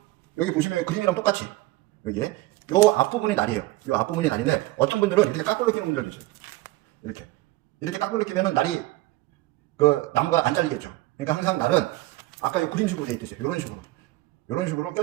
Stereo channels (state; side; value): quieter; left; 18.3 dB